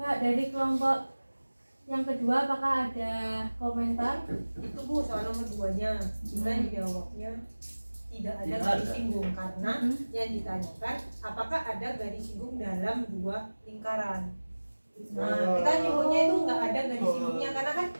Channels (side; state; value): both; inverted; correlation -1.00